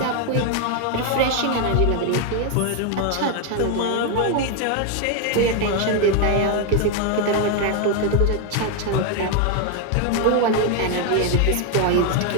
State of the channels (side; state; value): both; different; correlation 0.01